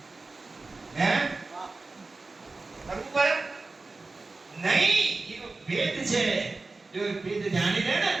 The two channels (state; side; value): quieter; left; 3.5 dB